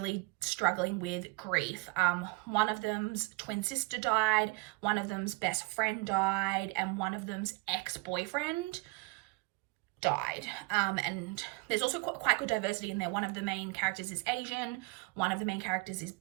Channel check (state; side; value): quieter; left; 27.4 dB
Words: struggling with grief. One of them's twin sister died, one of them's best friend died, and one of them's ex-boyfriend died. And there's also quite good diversity in there. One of the main characters is Asian, one of the main characters is